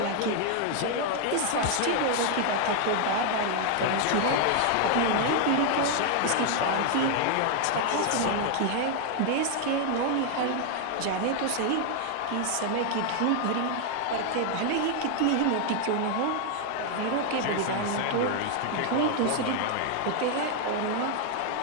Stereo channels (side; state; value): both; different; correlation 0.00